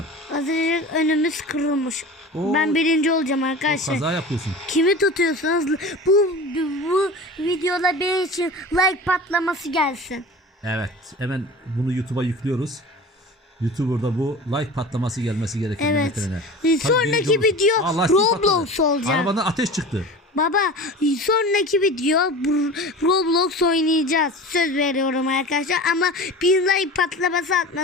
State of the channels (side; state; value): both; normal; correlation 0.35